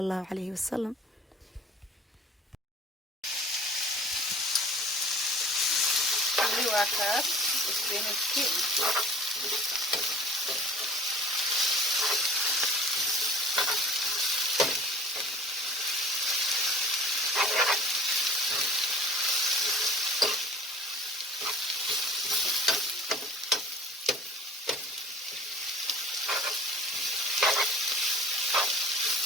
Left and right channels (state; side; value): normal; both; correlation 0.46